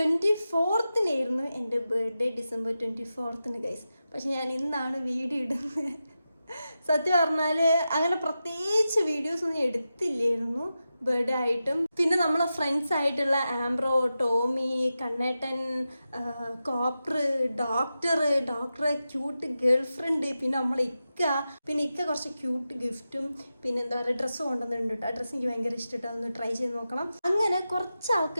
എൻ്റെ ബർത്ത്ഡേ, December 24 ഗൈസ്. പക്ഷെ ഞാൻ ഇന്നാണ് വീഡിയോ ഇടുന്നത്. സത്യം പറഞ്ഞാൽ അങ്ങനെ പ്രത്യേകിച്ച് വീഡിയോസ് ഒന്നും എടുത്തില്ലായിരുന്നു ബർത്ത്ഡേ ആയിട്ടും. പിന്നെ നമ്മളെ ഫ്രണ്ട്സ് ആയിട്ടുള്ള ആംബ്രോ, Tommy, Kannettan, Copper, doctor, cute girl friend, പിന്നെ നമ്മളെ ഇക്ക കുറച്ച് ക്യൂട്ട് ഗിഫ്റ്റും പിന്നെ എന്താ പറയുക ഡ്രസ്സ് കൊണ്ടുവന്നിട്ടുണ്ട് കേട്ടോ. ആ ഡ്രസ്സ് എനിക്ക് ഭയങ്കര ഇഷ്ടമായിട്ട് ഒന്ന് ട്രൈ ചെയ്ത് നോക്കണം. അങ്ങനെ കുറച്ച്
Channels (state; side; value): inverted; both; correlation -0.91